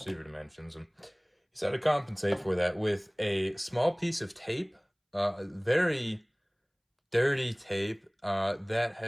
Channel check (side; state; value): both; identical; correlation 1.00